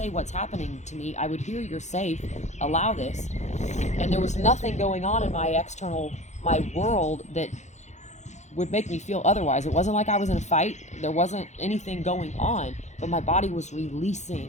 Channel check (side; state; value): right; late; 0.34 ms